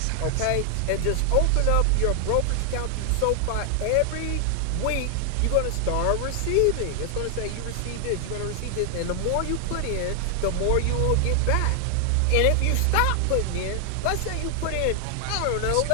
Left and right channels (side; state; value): both; different; correlation 0.00